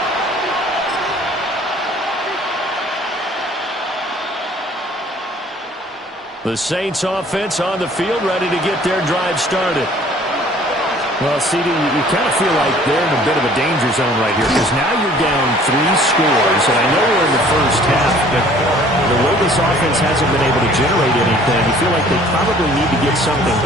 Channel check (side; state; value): both; normal; correlation 0.54